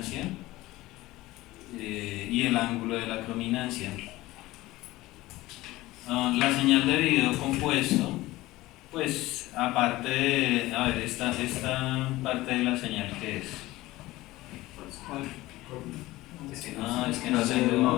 y el ángulo de la crominancia. La señal de video compuesto, pues aparte de, a ver, esta parte de la señal, ¿qué es? Es que no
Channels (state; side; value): quieter; right; 18.2 dB